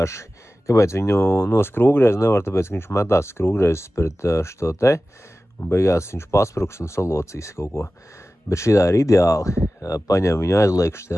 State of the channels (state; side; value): normal; both; correlation 0.96